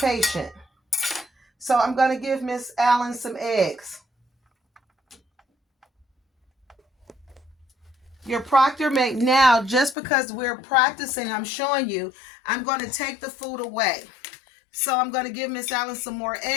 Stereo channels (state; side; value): drops out; right; at 10.0 s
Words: So I'm going to give Miss Allen some eggs. Your proctor may now, just because we're practicing, I'm showing you, I'm going to take the food away. So I'm going to give Miss Allen some more